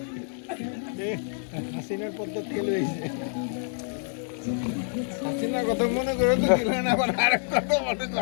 হাসিনার পদ্মার থেকে লইছে। হাসিনার কথা মনে করে তো দিলেন, আবার আরেক কথা মনে করে।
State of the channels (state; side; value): silent; right; digital silence